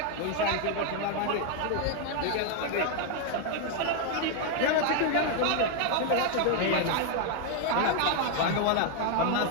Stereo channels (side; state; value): both; different; correlation 0.00